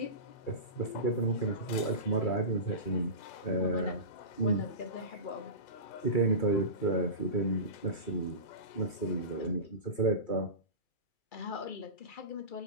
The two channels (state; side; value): late; right; 2.3 ms